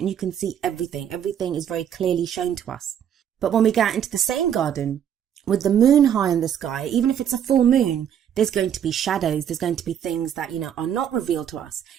you can see everything. Everything is very clearly shown to us. But when we go out into the same garden with the moon high in the sky, even if it's a full moon, there's going to be shadows. There's going to be things that, you know, are not revealed to us,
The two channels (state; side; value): quieter; left; 9.2 dB